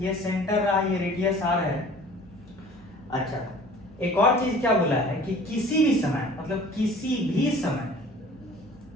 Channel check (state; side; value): normal; both; correlation 0.47